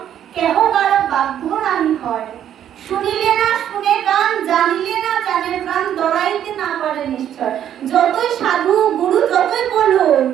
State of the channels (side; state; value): left; quieter; 10.3 dB